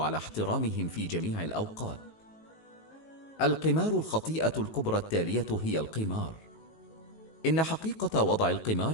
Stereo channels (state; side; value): late; right; 19 ms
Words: احترامهم في جميع الأوقات. القمار. الخطيئة الكبرى التالية هي القمار. إن حقيقة وضع